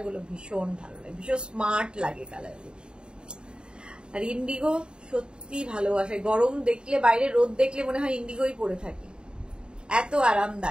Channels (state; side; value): late; left; 0.050 ms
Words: গুলো ভীষণ ভালো লাগে, ভীষণ স্মার্ট লাগে কালার গুলো। আর ইন্ডিগো সত্যি ভালোবাসে, গরম দেখলে, বাইরে রোদ দেখলে মনে হয় ইন্ডিগোই পরে থাকে, এত